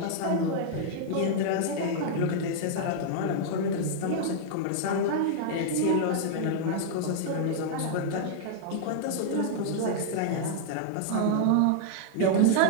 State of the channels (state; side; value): different; both; correlation -0.01